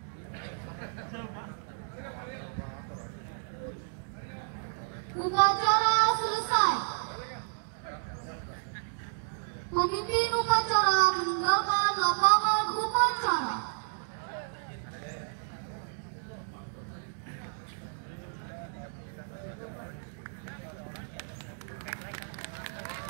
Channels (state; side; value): silent; left; digital silence